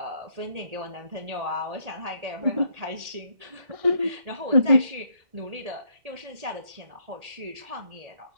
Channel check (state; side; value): late; left; 1.8 ms